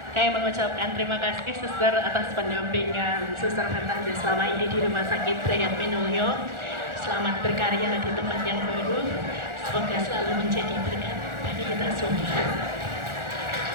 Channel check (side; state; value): left; late; 1.4 ms